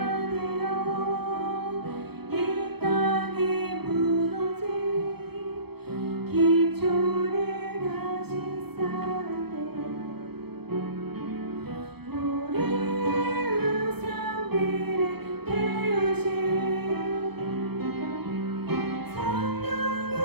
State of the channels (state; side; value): late; left; 0.97 ms